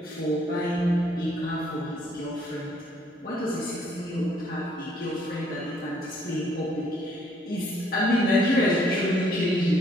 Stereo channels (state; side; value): normal; both; correlation 0.65